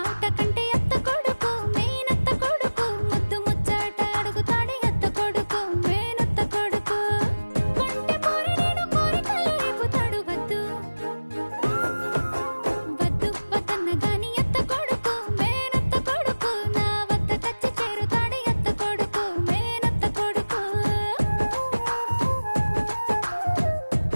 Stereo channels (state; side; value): inverted; both; correlation -1.00